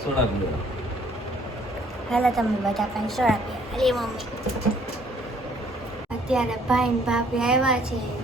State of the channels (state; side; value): normal; both; correlation 0.61